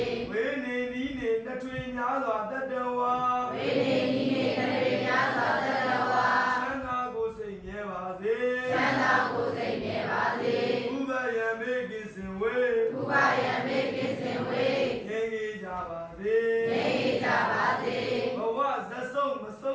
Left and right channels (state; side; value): identical; both; correlation 1.00